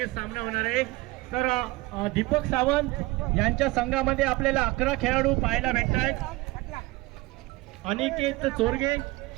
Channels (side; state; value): left; quieter; 21.3 dB